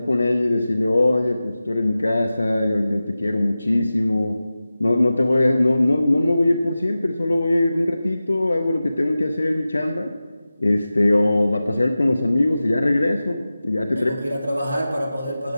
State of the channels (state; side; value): inverted; both; correlation -0.95